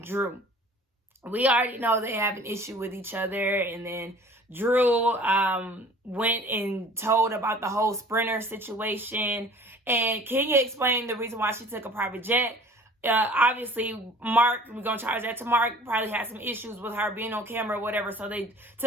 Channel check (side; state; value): both; normal; correlation 0.47